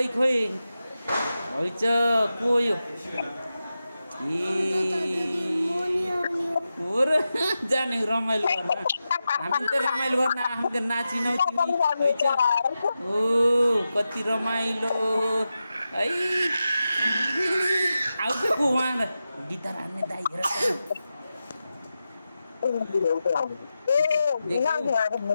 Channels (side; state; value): both; inverted; correlation -0.91